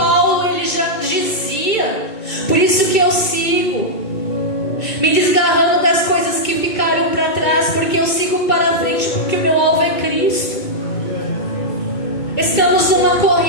ele já dizia, por isso que eu sigo, me desgarrando das coisas que ficaram para trás, porque eu sigo para frente, porque o meu alvo é Cristo. Estamos numa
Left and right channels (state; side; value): late; right; 2.2 ms